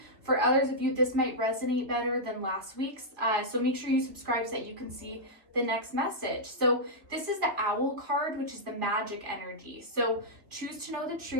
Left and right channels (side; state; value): left; late; 2.7 ms